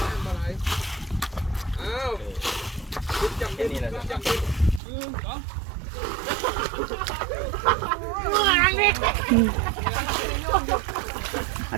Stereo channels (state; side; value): drops out; left; at 4.8 s